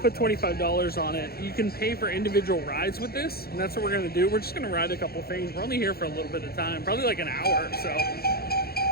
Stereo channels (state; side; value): late; right; 0.45 ms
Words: put $25 on it. You can pay for individual rides with this, and that's what we're gonna do. We're just gonna ride a couple things. We're only here for a little bit of time, probably like an hour or so.